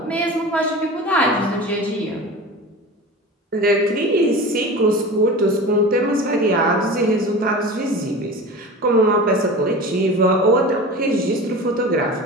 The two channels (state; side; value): normal; both; correlation 0.33